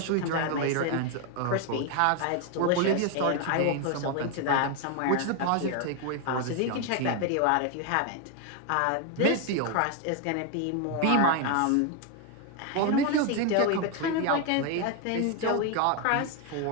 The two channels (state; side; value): different; both; correlation 0.01